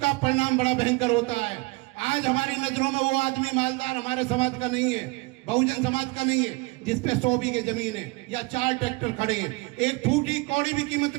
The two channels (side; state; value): left; quieter; 25.2 dB